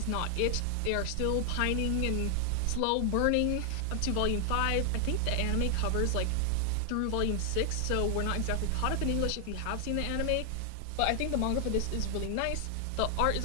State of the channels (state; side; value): different; both; correlation 0.00